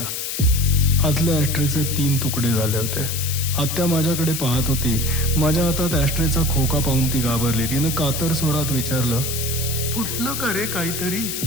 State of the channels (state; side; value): noise; left; hiss, 4 dB below the sound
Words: आतल्या ॲस्ट्रेचे 3 तुकडे झाले होते. आत्या माझ्याकडे पाहत होती. माझ्या हातात ॲस्ट्रेचा खोका पाहून ती घाबरली. तिनं कातर स्वरात विचारलं, फुटलं का रे काहीतरी?